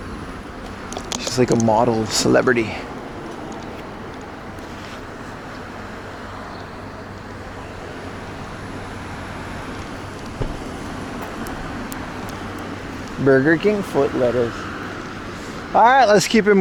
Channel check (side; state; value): both; identical; correlation 1.00